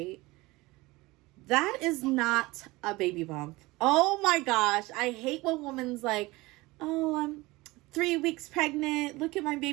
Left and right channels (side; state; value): left; quieter; 21.3 dB